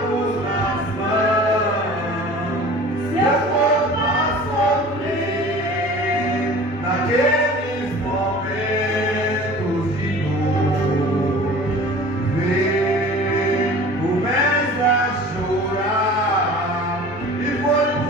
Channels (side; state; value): both; normal; correlation 0.42